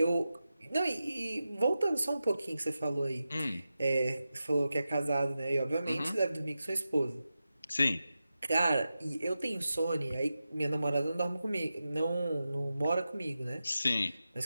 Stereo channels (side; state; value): both; inverted; correlation -0.92